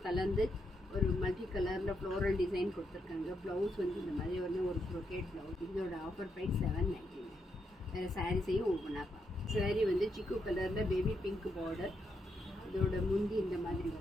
கலந்து ஒரு மல்டி கலரில் ஃப்ளோரல் டிசைன் கொடுத்துருக்காங்க. ப்ளவுஸ் வந்து இந்த மாதிரி ஒரு ப்ரொக்கேட் ப்ளவுஸ். இதோட ஆஃபர் ப்ரைஸ் 799. வேறு சாரீஸையும் ஒவ்வொன்றா பார்ப்போம். சாரீ வந்து சிக்கு கலரில் பேபி பிங்க் பார்டர். இதோட முந்தி இந்த மாதிரி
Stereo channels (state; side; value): normal; both; correlation 0.80